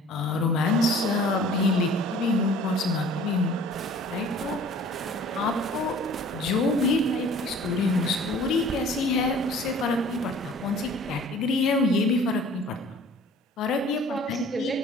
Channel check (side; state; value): both; normal; correlation 0.49